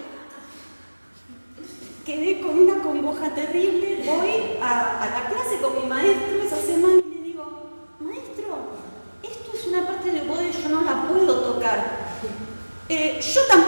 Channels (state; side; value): inverted; both; correlation -1.00